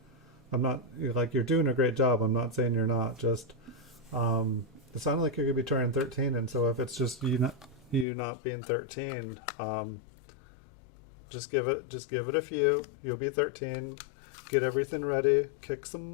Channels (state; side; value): drops out; right; at 8.1 s